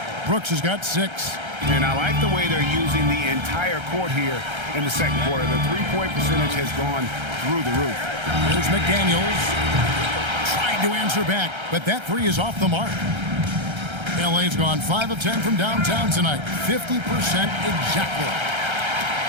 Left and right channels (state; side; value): late; left; 1.3 ms